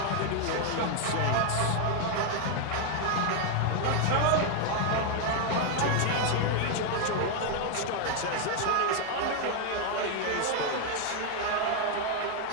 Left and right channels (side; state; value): both; different; correlation 0.01